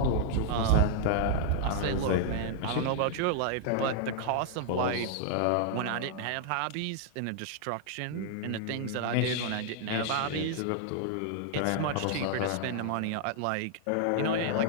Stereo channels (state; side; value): different; both; correlation -0.01